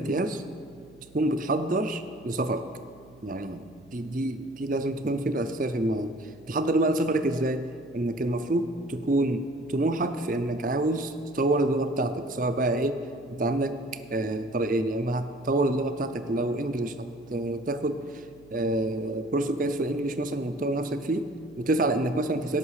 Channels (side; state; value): right; noise; hum, 25 dB below the sound